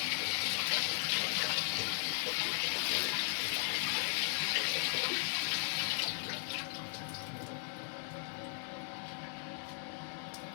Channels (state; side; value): silent; right; 53 dB below the other